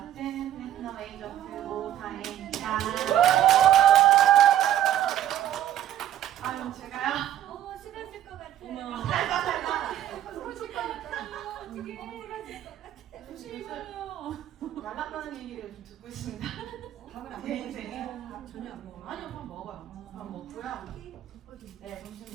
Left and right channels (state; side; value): quieter; left; 11.9 dB